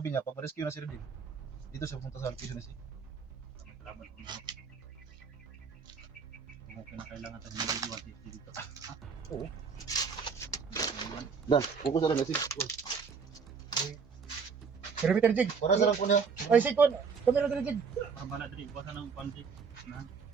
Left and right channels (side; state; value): left; quieter; 5.6 dB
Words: niya, pag rescue na si Rudin, dito siya pumunta sa location ni si. Salamat po. Kung kinakailangan tayo ng video dito. Oo. Dan, focus na lang na si. Pero Peter Jig. Para sa lang po niya. Ay, si Kwan. Kami na Jig. Para bala diri kuha ng panty. Na.